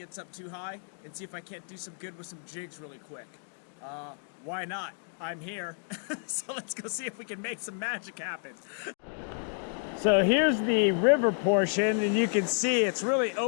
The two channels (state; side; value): silent; right; 57 dB below the other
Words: up too high and see if I can't do some good with some jigs really quick. Why not? I'm here. So let's go see if we can make some magic happen. So here's the river portion, and you can see it's really